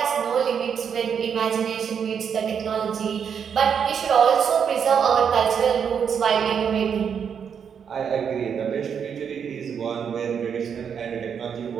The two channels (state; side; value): quieter; left; 7.4 dB